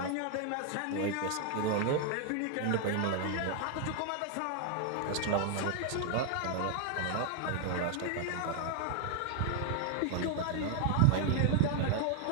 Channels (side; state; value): both; different; correlation 0.00